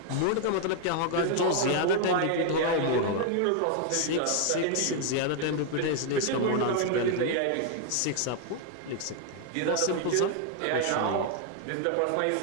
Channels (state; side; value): different; both; correlation 0.00